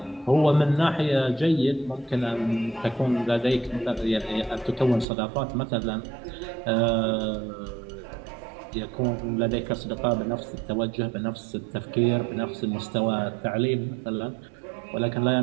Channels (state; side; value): drops out; left; at 5.1 s